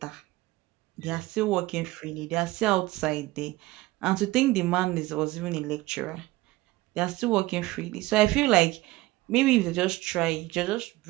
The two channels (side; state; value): left; quieter; 19.1 dB